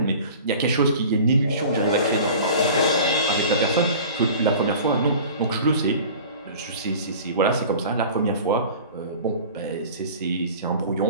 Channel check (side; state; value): both; inverted; correlation -0.41